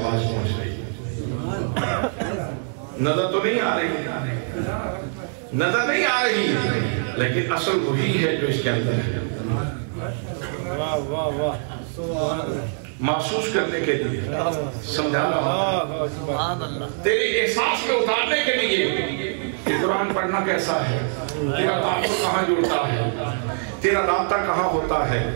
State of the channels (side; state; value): left; silent; digital silence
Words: پہنچ رہی ہے۔ نظر تو نہیں آ رہی، نظر نہیں آ رہی، لیکن اصل وہی ہے جو اس کے اندر ہے۔ محسوس کرنے کے لیے سمجھا رہا ہوں، تیرے احساس میں اتارنے کے لیے کہ قرآن پڑھنا کیسا ہے، تیرا تعلق کہاں جڑتا ہے، تیرا رابطہ کہاں ہوتا ہے،